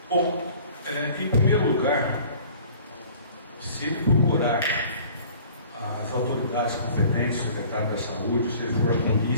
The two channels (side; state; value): both; inverted; correlation -0.49